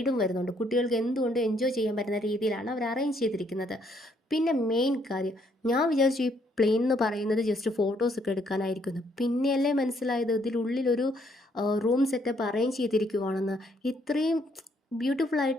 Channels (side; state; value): both; normal; correlation 0.69